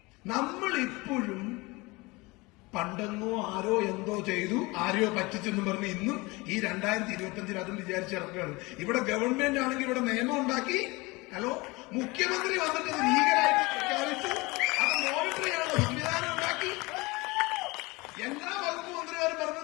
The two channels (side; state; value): right; quieter; 23.9 dB